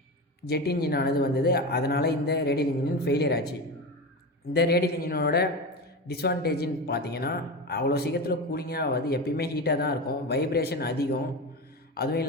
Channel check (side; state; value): both; normal; correlation 0.23